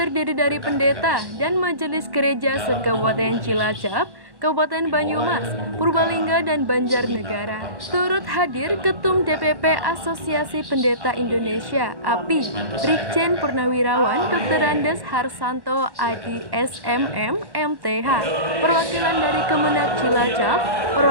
dari pendeta dan majelis gereja se-Kabupaten Cilacap, Kabupaten Banyumas, Purbalingga, dan Banjarnegara. Turut hadir Ketum DPP Asosiasi Pendeta Indonesia (API), Brigjen Purnawirawan Dr. Andes Harsanto Adi SMM MTH, perwakilan dari Kemenak Cilacap,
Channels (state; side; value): late; left; 1.1 ms